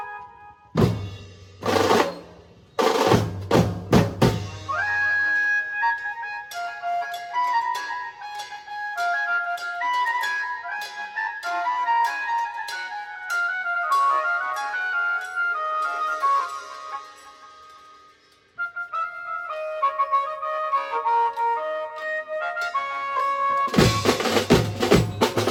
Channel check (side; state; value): both; identical; correlation 1.00